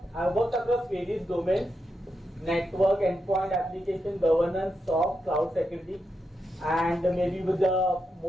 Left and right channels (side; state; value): both; normal; correlation 0.85